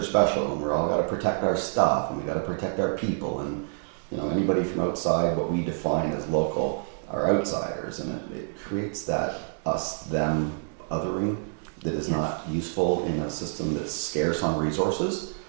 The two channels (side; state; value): left; silent; digital silence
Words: special, and we're all got to protect our stuff, and we got to protect our people, and anybody from outside what we define as local are outsiders, and it creates that us-them othering that is not useful in a system that's scarce on resources,